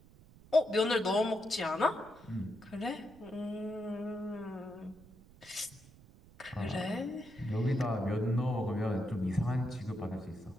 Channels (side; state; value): right; noise; rumble, 23 dB below the sound